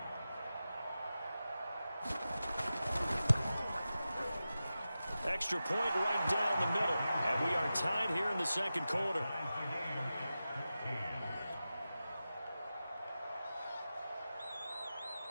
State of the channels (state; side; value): inverted; both; correlation -0.93